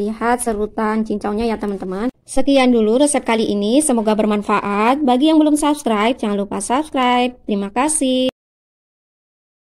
serutan cincaunya ya teman-teman. Sekian dulu resep kali ini, semoga bermanfaat. Bagi yang belum subscribe, jangan lupa subscribe. Terima kasih.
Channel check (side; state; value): both; identical; correlation 1.00